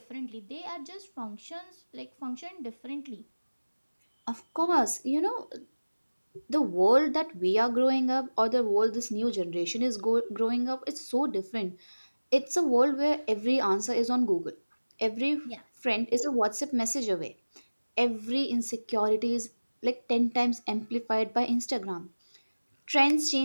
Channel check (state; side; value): inverted; both; correlation -1.00